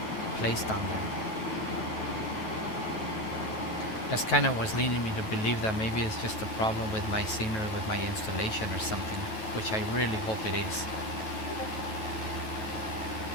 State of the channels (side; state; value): right; late; 9.2 ms